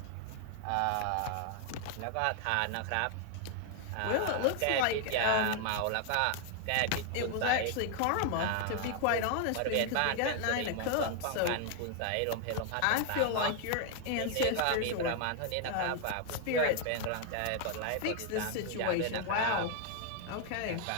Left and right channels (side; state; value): both; different; correlation 0.00